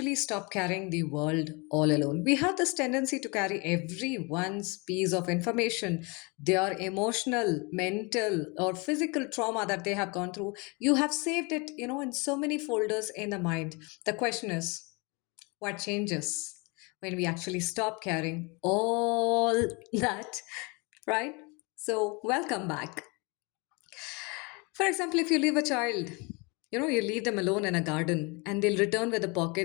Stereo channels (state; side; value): quieter; right; 29.3 dB